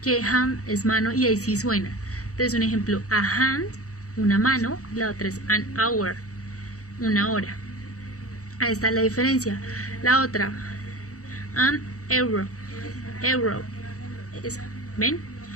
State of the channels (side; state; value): right; late; 0.65 ms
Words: que hand es mano y ahí sí suena. Entonces un ejemplo, a hand, una mano, la otra es an hour, una hora. Ahí está la diferencia. La otra, an euro, euro, ¿ven?